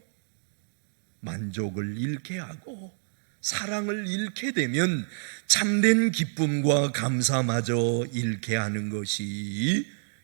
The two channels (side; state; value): left; silent; digital silence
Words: 만족을 잃게 하고 사랑을 잃게 되면 참된 기쁨과 감사마저 잃게 하는 것이